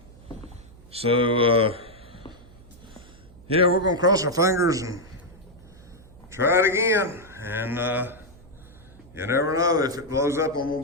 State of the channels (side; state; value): right; noise; hum, 23 dB below the sound